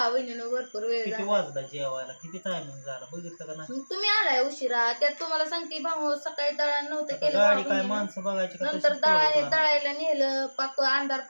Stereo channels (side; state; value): both; inverted; correlation -1.00